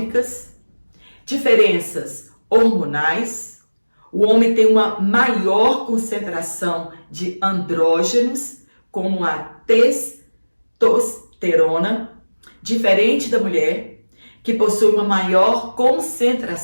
diferenças hormonais. O homem tem uma maior concentração de andrógenos, como a testosterona, diferente da mulher, que possui uma maior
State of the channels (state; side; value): inverted; both; correlation -1.00